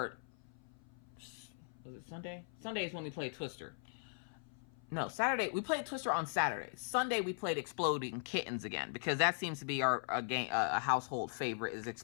was it Sunday? Sunday is when we played Twister. No, Saturday. We played Twister on Saturday. Sunday we played Exploding Kittens again, because that seems to be a household favorite, is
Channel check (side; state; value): right; silent; 52 dB below the other